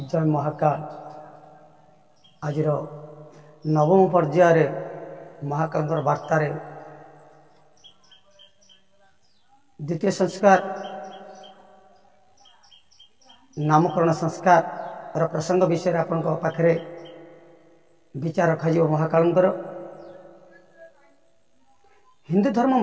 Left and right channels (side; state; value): both; identical; correlation 1.00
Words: जय महाकाल। आज नवम पर्यायर महाकाल वार्तार द्वितीय संस्कार नामकरण संस्कार प्रसंग विषय आपण पाखे विचार रखा महाकाल। हिंदू धर्म